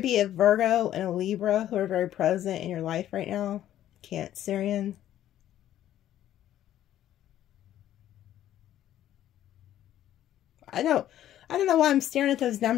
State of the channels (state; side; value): quieter; right; 12.1 dB